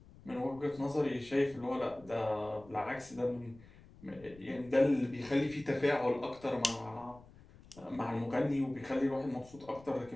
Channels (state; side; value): noise; left; rumble, 22 dB below the sound